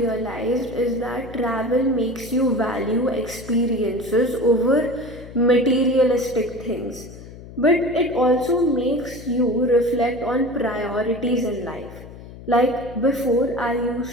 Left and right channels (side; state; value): left; noise; hum, 16 dB below the sound